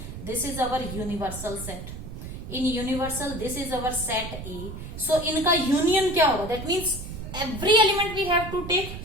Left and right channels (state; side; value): noise; right; rumble, 9 dB below the sound